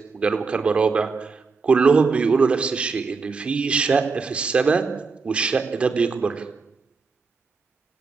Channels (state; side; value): quieter; left; 4.6 dB